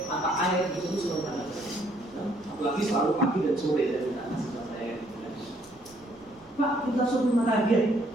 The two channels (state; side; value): noise; right; rumble, 28 dB below the sound